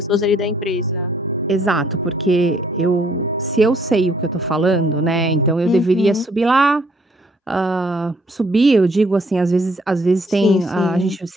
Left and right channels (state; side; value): normal; both; correlation 0.64